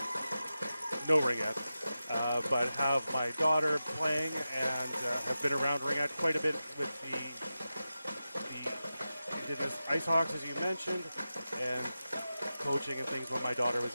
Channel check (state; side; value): inverted; both; correlation -0.92